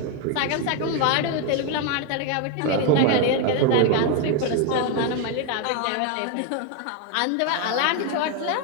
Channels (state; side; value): different; both; correlation 0.01